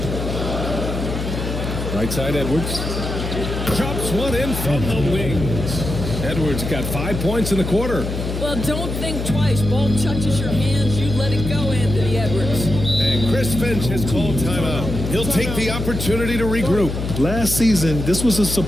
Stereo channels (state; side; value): noise; left; hum, 4 dB below the sound